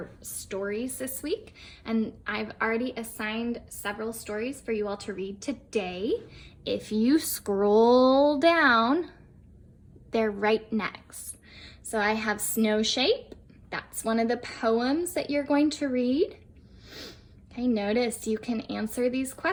stories this week, and I've already assigned several stories for you all to read today. If you scroll down, they're right next. So I have Snow Shape. That's one of the poems that you're going to read. Okay, notice you can answer these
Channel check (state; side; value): identical; both; correlation 1.00